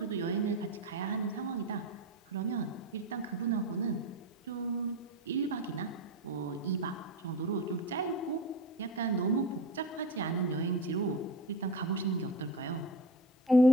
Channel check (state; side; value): normal; both; correlation 0.26